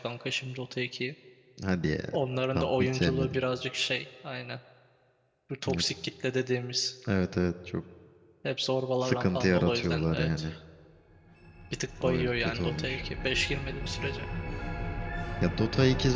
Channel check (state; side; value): identical; both; correlation 1.00